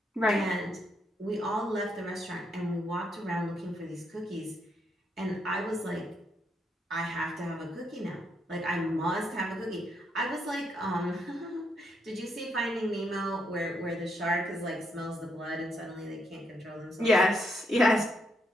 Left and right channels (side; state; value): both; normal; correlation 0.77